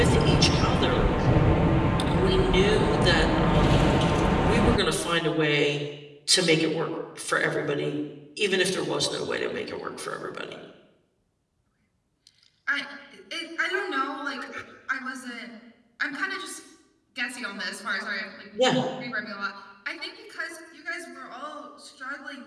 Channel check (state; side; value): identical; both; correlation 1.00